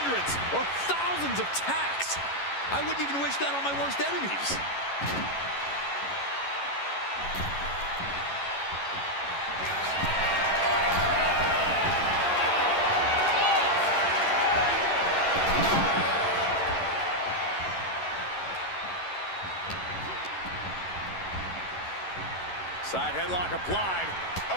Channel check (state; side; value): late; right; 11 ms